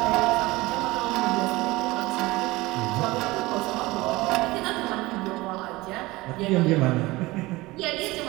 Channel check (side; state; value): left; quieter; 20.7 dB